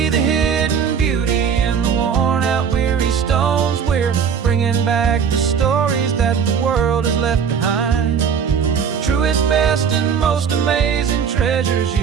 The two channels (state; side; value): quieter; left; 6.9 dB